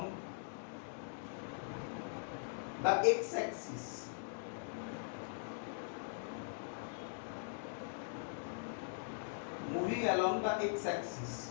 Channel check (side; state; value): right; silent; digital silence